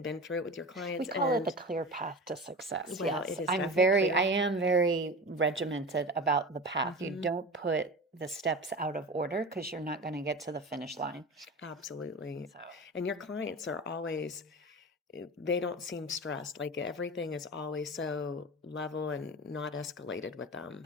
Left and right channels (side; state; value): both; normal; correlation 0.31